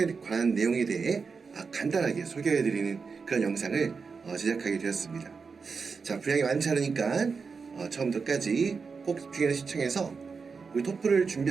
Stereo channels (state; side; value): quieter; left; 5.1 dB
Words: 관한 내용에 대해 간단하게 소개해드리는 그런 영상을 제작하게 되었습니다. 자, 분량이 많지 않으니까 처음부터 끝까지 꼭 집중해서 시청해서 우리 토플을